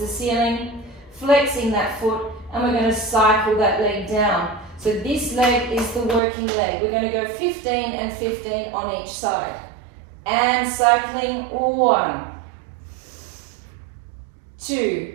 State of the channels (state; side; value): drops out; left; at 6.2 s